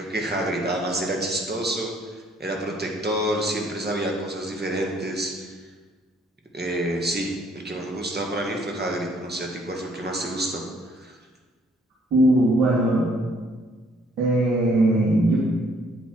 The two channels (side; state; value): both; normal; correlation 0.63